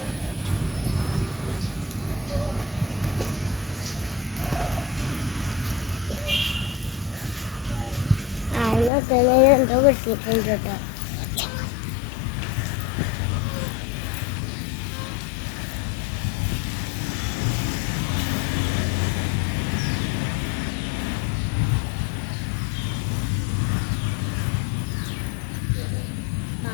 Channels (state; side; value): drops out; right; at 8.9 s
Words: എന്തോ കിട്ടിയിട്ടുണ്ട് കേട്ടോ.